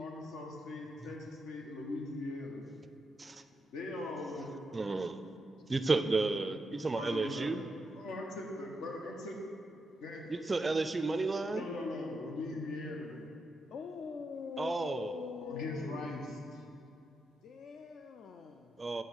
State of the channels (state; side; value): normal; both; correlation 0.84